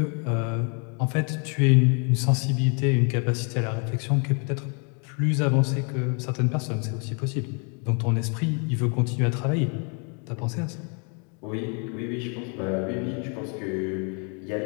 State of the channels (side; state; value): right; quieter; 37.5 dB